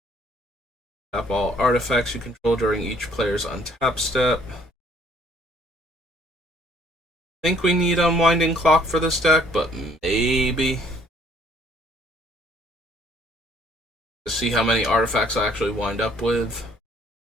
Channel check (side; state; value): both; normal; correlation 0.61